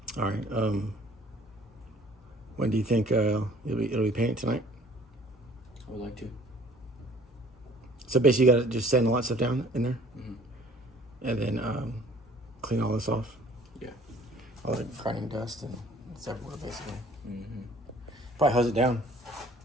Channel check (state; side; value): normal; both; correlation 0.54